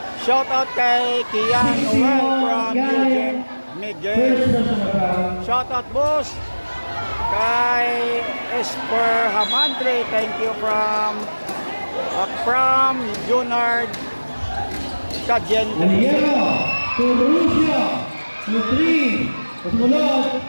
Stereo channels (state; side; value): inverted; both; correlation -1.00